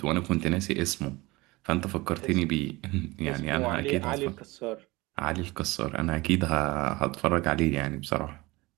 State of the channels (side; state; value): left; quieter; 21.9 dB